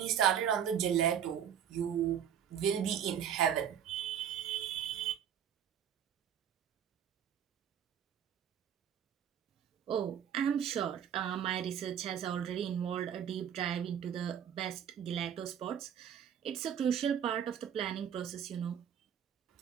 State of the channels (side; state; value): left; quieter; 8.9 dB